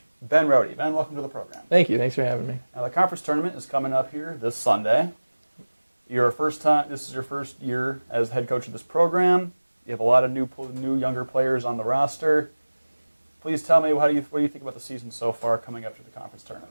Ben Rohde. Ben, welcome to the program. Thank you. Thanks for having me. Now, the conference tournament is coming up here this Sunday. This is your first year as head coach of this program. You have a lot of new younger players on the roster. Please tell me, what do you think about the season so far coming up to the conference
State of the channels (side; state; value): both; inverted; correlation -1.00